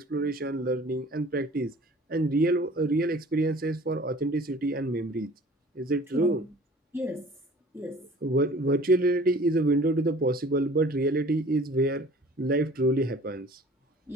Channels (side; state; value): both; normal; correlation 0.48